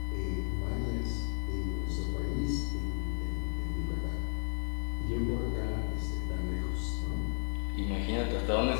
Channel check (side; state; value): right; silent; digital silence